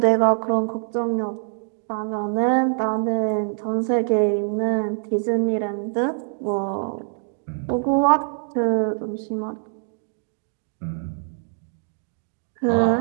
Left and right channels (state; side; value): silent; left; 63 dB below the other